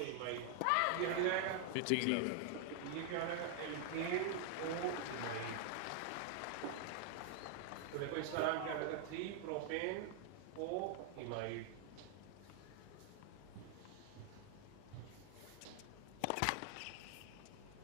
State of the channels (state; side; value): different; both; correlation 0.00